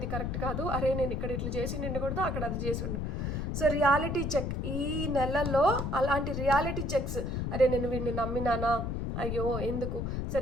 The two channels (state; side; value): noise; left; rumble, 2 dB below the sound